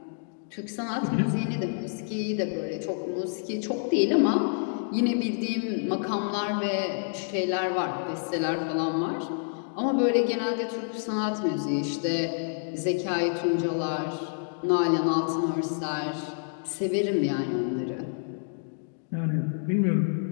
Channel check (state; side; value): silent; right; digital silence